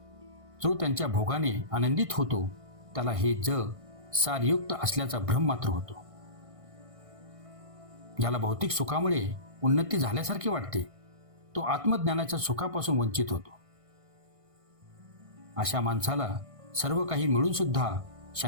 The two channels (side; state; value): left; late; 1.6 ms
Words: जो त्यांच्या भोगाने आनंदित होतो, त्याला हे जग सारयुक्त असल्याचा भ्रम मात्र होतो. ज्याला भौतिक सुखामुळे उन्नती झाल्यासारखे वाटते, तो आत्मज्ञानाच्या सुखापासून वंचित होतो. अशा माणसाला सर्व काही मिळून सुद्धा